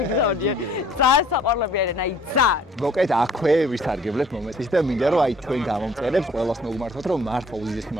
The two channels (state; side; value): normal; both; correlation 0.56